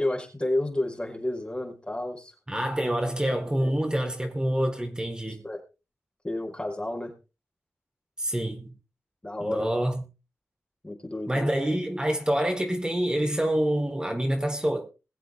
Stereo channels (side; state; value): both; normal; correlation 0.94